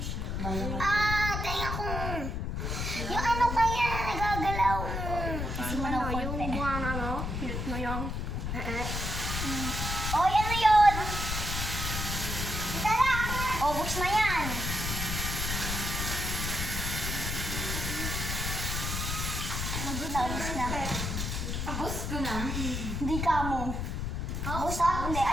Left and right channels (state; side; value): noise; left; rumble, 2 dB below the sound